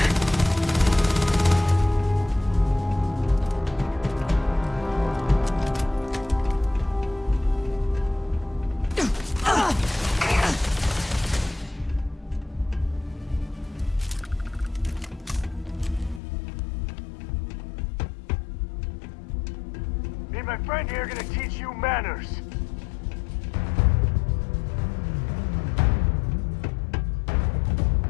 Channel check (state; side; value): drops out; right; at 16.2 s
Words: Me and my friend here are gonna teach you manners.